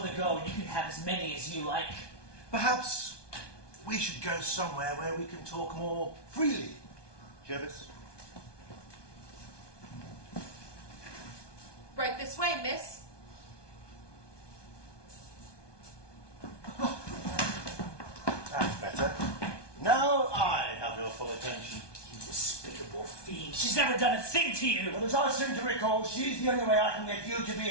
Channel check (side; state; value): right; late; 1.2 ms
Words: go and you can have as many as you like. Perhaps we should go somewhere where we can talk more freely. Jervis? Right this way, miss. That's better. Now I have your full attention. You despicable fiend. She's never done a thing to you. Well, as I seem to recall, she's the only way I can get you to